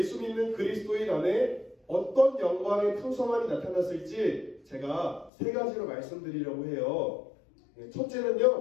믿는 그리스도인 안에 어떤 영광의 풍성함이 나타났을지 제가 세 가지로 말씀드리려고 해요.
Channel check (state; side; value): drops out; right; at 5.3 s